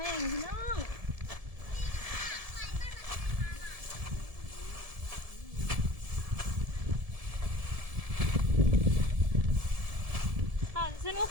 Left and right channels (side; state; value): left; late; 1.7 ms